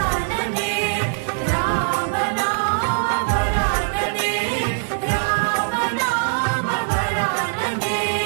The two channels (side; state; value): left; silent; digital silence